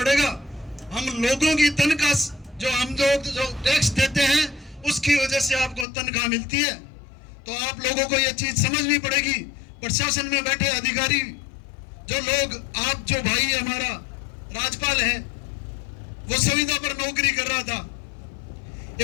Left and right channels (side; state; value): right; drops out; at 5.9 s